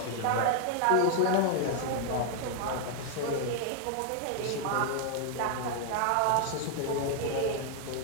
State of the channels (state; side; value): different; both; correlation 0.00